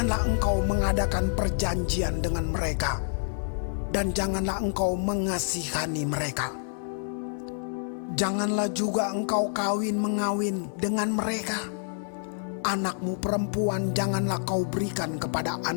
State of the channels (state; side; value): silent; right; 58 dB below the other